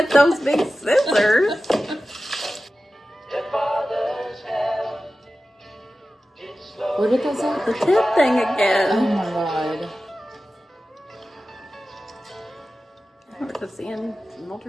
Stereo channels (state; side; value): normal; both; correlation 0.94